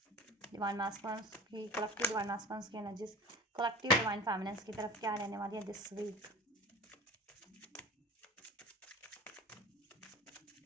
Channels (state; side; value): normal; both; correlation 0.36